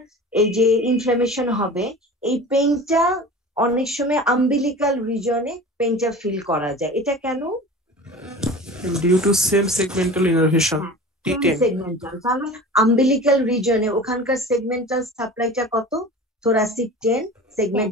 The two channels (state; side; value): normal; both; correlation 0.37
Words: এই যে ইনফ্লামেশন হবে, এই পেইনটা অনেক সময় আম্বিলিকাল রিজনে পেইনটা ফিল করা যায়। এটা কেন? Due to same segmental innervation T10। Segmental, তাহলে আম্বিলিকাল রিজনে ওখানকার সেগমেন্টাল সাপ্লাইটা কত? Thoracic 10,